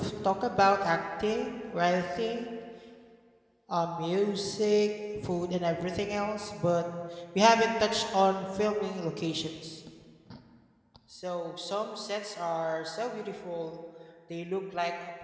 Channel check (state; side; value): identical; both; correlation 1.00